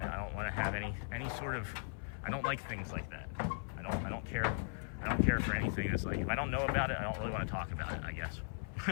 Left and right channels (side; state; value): right; silent; 52 dB below the other